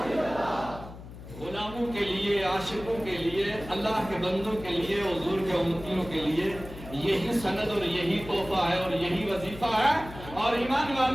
غلاموں کے لیے, عاشقوں کے لیے, اللہ کے بندوں کے لیے, حضور کے امتیوں کے لیے یہی سند اور یہی تحفہ ہے اور یہی وظیفہ ہے اور ایمان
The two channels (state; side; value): noise; left; hum, 14 dB below the sound